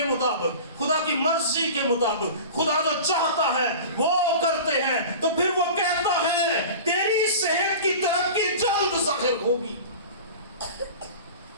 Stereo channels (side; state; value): both; inverted; correlation -0.36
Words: مطابق، خدا کی مرضی کے مطابق خدا جو چاہتا ہے وہ کرتے ہیں تو پھر وہ کہتا ہے تیری صحت کی ترقی جلد ظاہر ہوگی۔